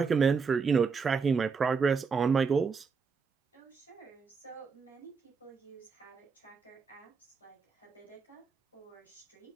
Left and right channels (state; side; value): quieter; left; 5.4 dB